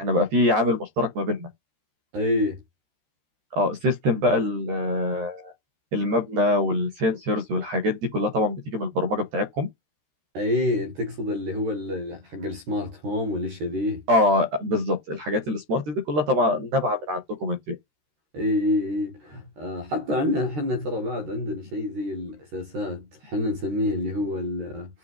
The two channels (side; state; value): left; late; 13 ms